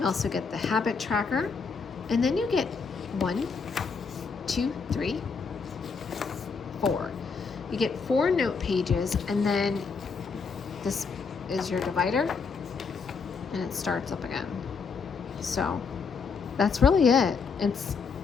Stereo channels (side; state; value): right; quieter; 5.2 dB